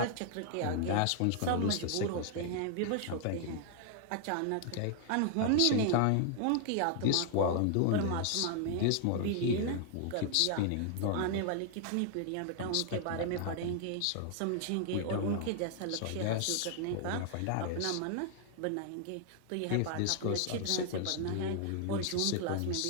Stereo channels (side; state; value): both; different; correlation 0.00